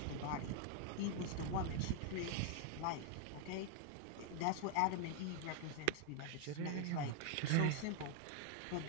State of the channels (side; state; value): both; different; correlation 0.00